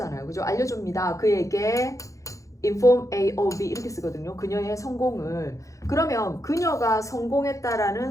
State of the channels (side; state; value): right; late; 0.15 ms